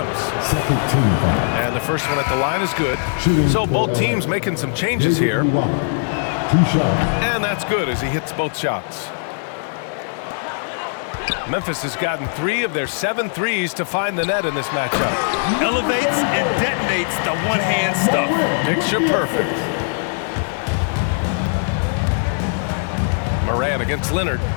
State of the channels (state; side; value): silent; right; digital silence